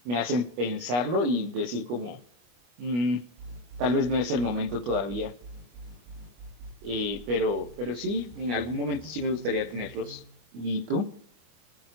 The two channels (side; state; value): left; late; 25 ms